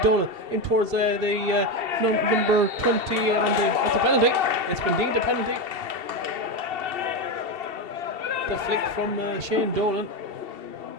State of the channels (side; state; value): left; late; 2.7 ms